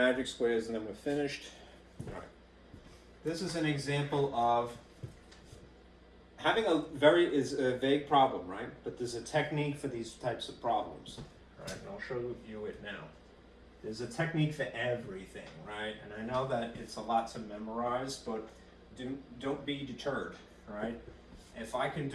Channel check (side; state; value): both; identical; correlation 1.00